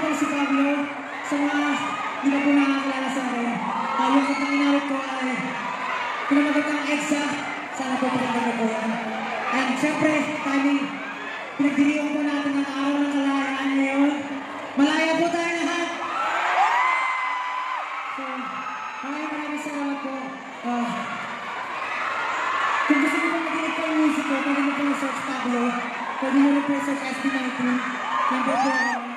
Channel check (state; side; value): identical; both; correlation 1.00